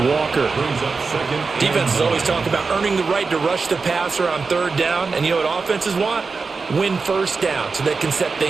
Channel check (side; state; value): left; quieter; 4.5 dB